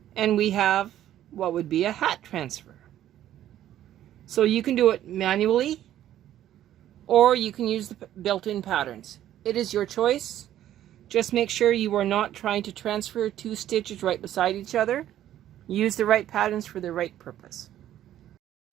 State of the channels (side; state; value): left; quieter; 12.1 dB